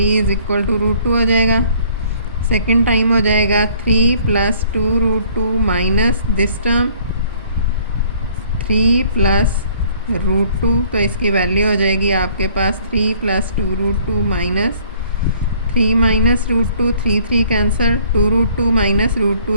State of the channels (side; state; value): both; inverted; correlation -0.58